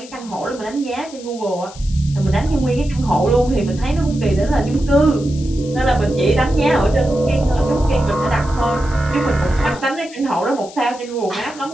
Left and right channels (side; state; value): left; noise; hiss, 19 dB below the sound